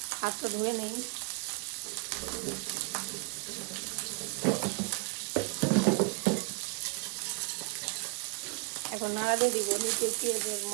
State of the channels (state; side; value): quieter; left; 32.2 dB